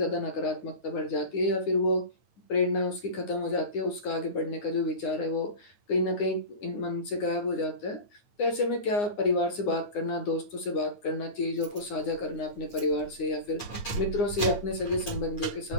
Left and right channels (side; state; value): right; late; 9.7 ms